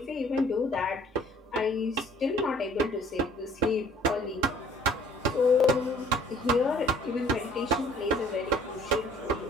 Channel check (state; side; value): normal; both; correlation 0.55